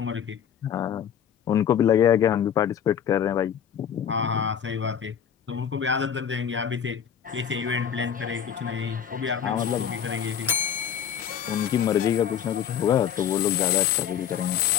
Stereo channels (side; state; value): right; quieter; 8.6 dB